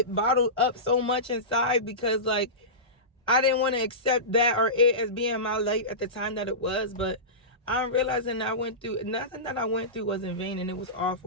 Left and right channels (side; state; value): both; normal; correlation -0.20